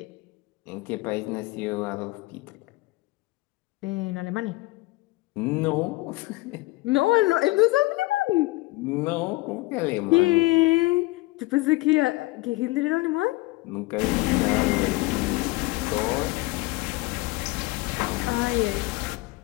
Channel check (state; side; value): quieter; right; 21.5 dB